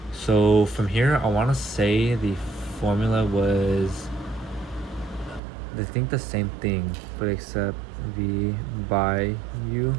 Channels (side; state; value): left; drops out; at 5.4 s